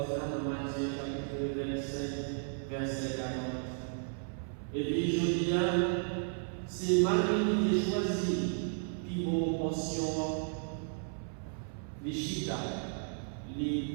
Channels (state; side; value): silent; left; 55 dB below the other